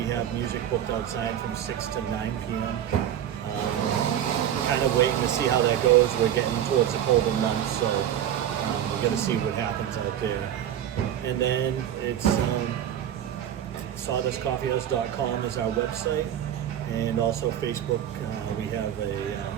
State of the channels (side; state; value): left; quieter; 10.4 dB